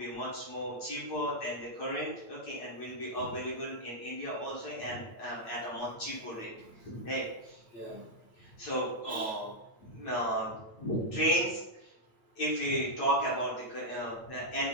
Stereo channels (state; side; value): late; right; 8.9 ms